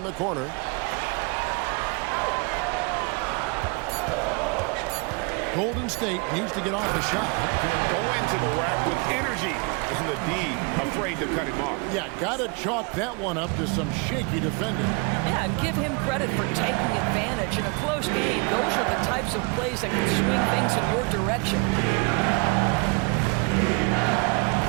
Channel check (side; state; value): left; quieter; 31.2 dB